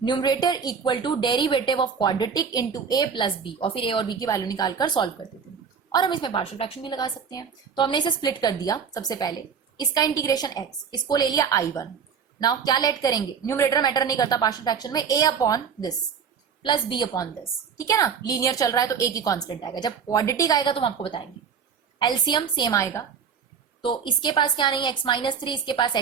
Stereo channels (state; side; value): quieter; left; 6.7 dB